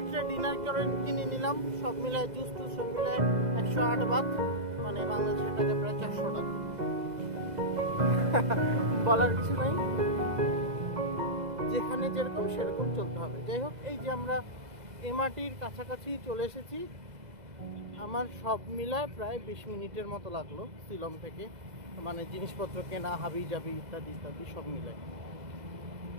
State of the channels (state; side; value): late; left; 2.0 ms